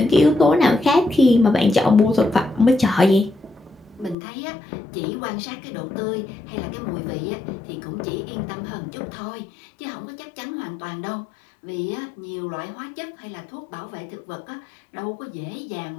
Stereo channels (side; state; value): right; drops out; at 4.2 s